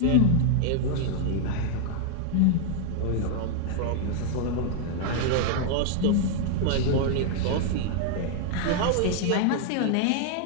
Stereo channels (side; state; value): both; different; correlation 0.00